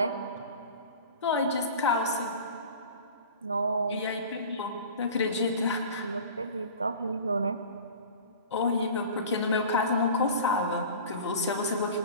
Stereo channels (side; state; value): both; inverted; correlation -0.39